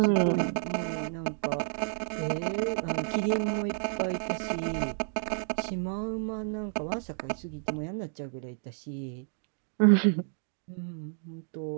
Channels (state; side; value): silent; left; digital silence